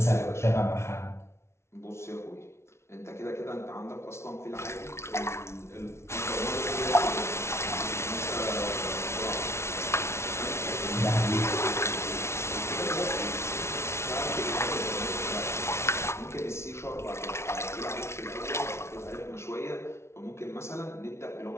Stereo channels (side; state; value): right; late; 0.13 ms